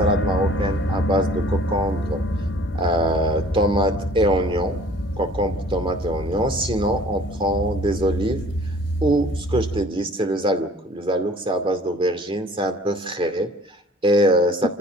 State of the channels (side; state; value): both; normal; correlation 0.52